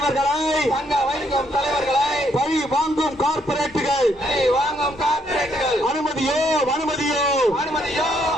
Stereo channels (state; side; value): normal; both; correlation 0.72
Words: பழி வாங்கும் கார்ப்பரேட்டுகள் அனுமதியோ